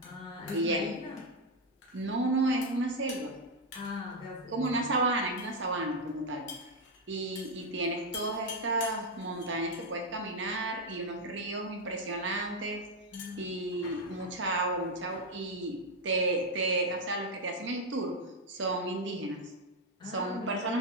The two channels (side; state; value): both; normal; correlation 0.03